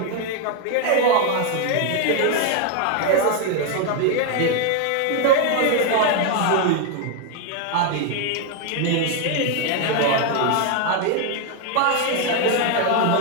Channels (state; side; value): different; both; correlation 0.01